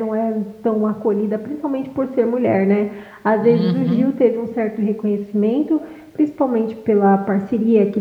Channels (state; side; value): identical; both; correlation 1.00